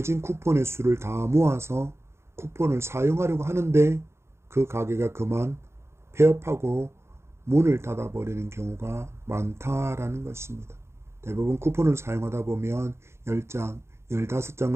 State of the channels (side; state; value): left; late; 0.13 ms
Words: 쿠폰의 수를 다 모아서 쿠폰을 사용하려고 하는데 그 가게가 그만 폐업하고 문을 닫아버리는 경우가 많다라는 것입니다. 대부분 쿠폰을 사용하다 보면 10장,